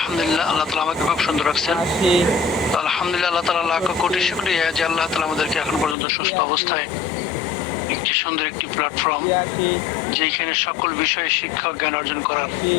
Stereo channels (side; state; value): right; drops out; at 6.0 s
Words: আল্লাহ তাআলা আমাকে খুব সুন্দর রাখছেন। 80 তো আলহামদুলিল্লাহ, আল্লাহ তাআলা লাখ কোটি শুকরিয়া যে আল্লাহ তাআলা আমাদেরকে এখন পর্যন্ত সুস্থ অবস্থায় একটি সুন্দর একটি প্ল্যাটফর্ম, 83 যেখানে সকল বিষয়ে শিক্ষা ও জ্ঞান অর্জন করার